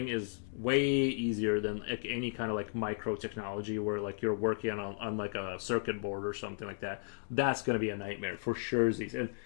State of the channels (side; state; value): right; silent; digital silence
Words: is way easier than like any kind of like micro technology where like you're working on like a circuit board or something like that. That's going to be a nightmare for sure. And